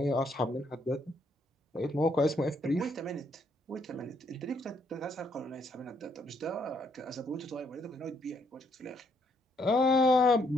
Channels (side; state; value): both; normal; correlation 0.71